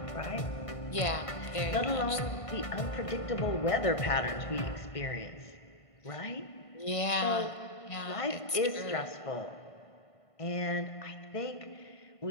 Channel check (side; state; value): right; late; 1.5 ms